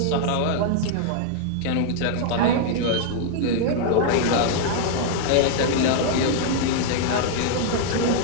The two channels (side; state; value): both; different; correlation -0.01